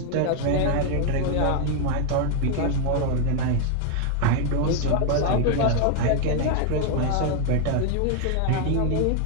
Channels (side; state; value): both; different; correlation 0.01